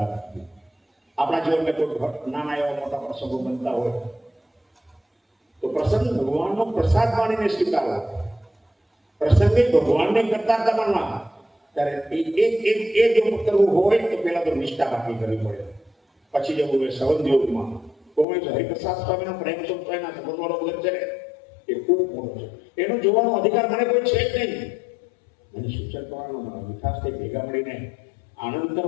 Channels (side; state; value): right; drops out; at 18.2 s